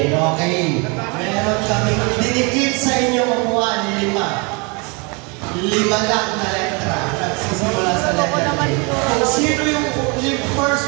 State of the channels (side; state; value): left; quieter; 31.0 dB